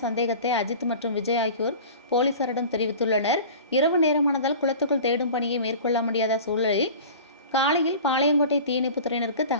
சந்தேகத்தை அஜித் மற்றும் விஜய் ஆகியோர் போலீசாரிடம் தெரிவித்துள்ளனர். இரவு நேரமானதால் குளத்துக்குள் தேடும் பணியை மேற்கொள்ள முடியாத சூழலில் காலையில் பாளையங்கோட்டை தீயணைப்புத் துறையினருக்கு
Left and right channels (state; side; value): inverted; both; correlation -0.39